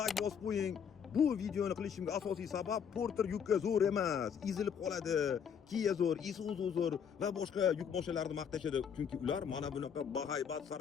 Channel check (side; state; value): right; quieter; 7.5 dB